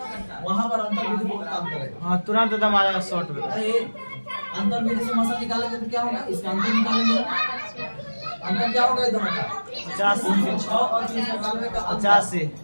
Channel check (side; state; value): both; inverted; correlation -1.00